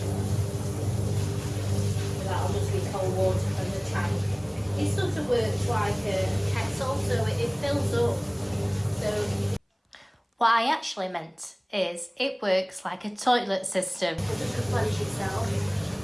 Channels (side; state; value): both; identical; correlation 1.00